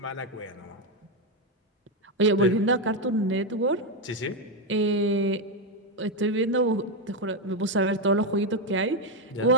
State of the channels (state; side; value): normal; both; correlation 0.07